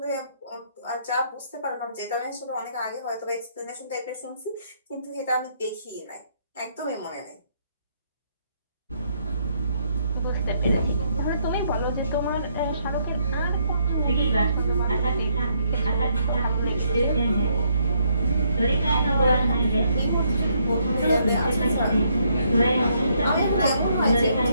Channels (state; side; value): inverted; both; correlation -0.72